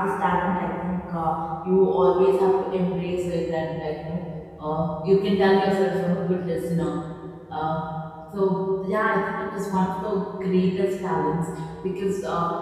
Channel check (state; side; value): identical; both; correlation 1.00